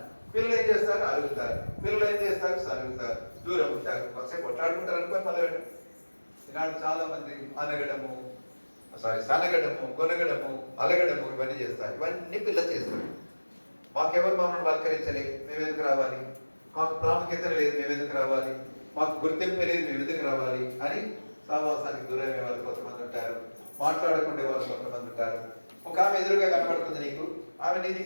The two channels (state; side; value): inverted; both; correlation -1.00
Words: పిల్లలు ఏం చేస్తారు? అలుగుతారు. పిల్లలు ఏం చేస్తారు? సలుగుతారు, దూరం ఉంటారు, ఒకసేపు కొట్లాడుకుంటారు అనుకోని మొదలు. ఈనాడు చాలా మంది సనగడము, కొనగడము, అలగడము ఇవన్నీ చేస్తారు. ఇవన్నీ పిల్లలు చేస్తారు. మాకెవరు మమ్మల్ని పలకరించలేదు, మేమెందుకు రావాలి? మాకు ప్రాముఖ్యత లేదు, మేమెందుకు రావాలి? మాకు గుర్తింపు లేదు, మేమెందుకు రావాలి అని సహవాసానికి దూరమే వాళ్ళు కొంతమంది ఉంటారు. మాట్లాడుకునే వాళ్ళు కొంతమంది ఉంటారు. ఒక ఆమె ఎదురుగా కనబడుతుంది నీకు, ఆమె నీ